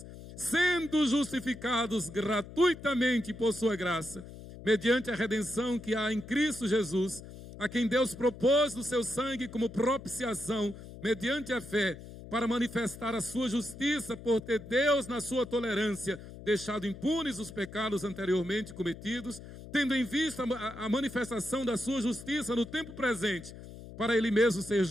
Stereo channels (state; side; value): noise; left; hum, 14 dB below the sound